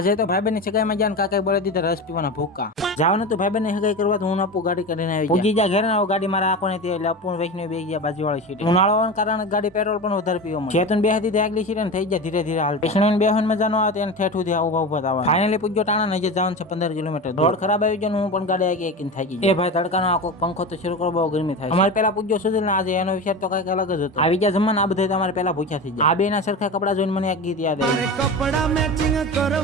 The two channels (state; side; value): normal; both; correlation 0.26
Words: તો ભાઈબંધ ની સગાઈમાં જ્યાં કાકાએ બોલી દીધા રસ પીવાના ભૂકા જવાનું તો ભાઈબંધ ની સગાઈ કરવા તો હું આપું ગાડી કરીને આવી પૂજી જા ઘરે આવું ગાડી મારા આંખો નથી એટલે અપૂર્ણ વૈષ્ણવ બેસી ગયા બાજુવાળી સીટ ઉનાળો હોવાના કારણે ગાડી પેટ્રોલ પણ વધારે પીવો મળે ચેતન બે હતી આગલી સીટ ને થઈ જાય ધીરે ધીરે હાલ વૈષ્ણવ બેહન મજા ન આવે એને ઠેઠું થી ઉભા ઉભા થવા ફાઇનલી પૂજ્યો ટાણા નજર જવાનું છે 15 કિલોમીટર રોડ ખરાબ આવી ગયો હું પણ ગાડી આગી એકીને થાકી ગઈ એ ભાઈ તડકાનો આખો પંખો તો શરૂ કરો બહુ ગરમી થાય અમારે પેલા પૂજ્યો સુધીર ને આજે એનો વિચાર તો કઈક અલગ જ હતો આવી ગયા જમવાના આ બધા તમારે પેલા ભૂખ્યા થઈ જાય આ બે ના સરખા કપડા જોઈને મને એક ગીત યાદ આવ્યું કપડા મેચિંગ